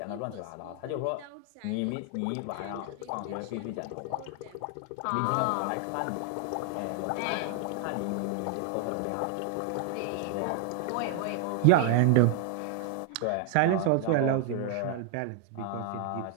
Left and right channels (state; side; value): different; both; correlation 0.00